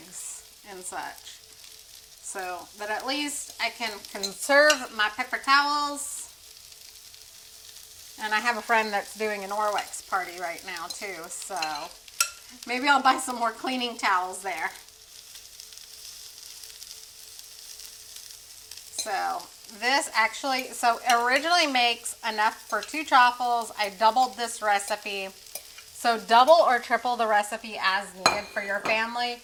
and such. So that at least I can conserve my paper towels. And I have a friend that's doing an Norwex party right now too. So maybe I'll buy some more cleaning towels there. So this actually, so it originally makes enough for 2 chaffles. I doubled this recipe. So double or triple the recipe as needed for your family.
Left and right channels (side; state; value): both; identical; correlation 1.00